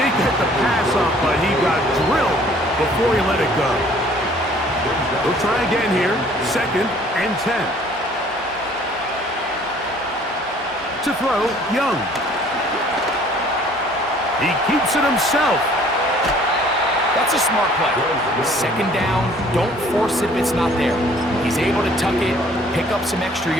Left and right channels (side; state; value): both; normal; correlation 0.56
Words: get the pass off, but he got drilled before he let it go. We'll try again here. 2nd and 10. To throw, Young. He keeps it himself. That's a smart play. 2nd down, don't force it if it's not there. He's able to tuck it, pick up some extra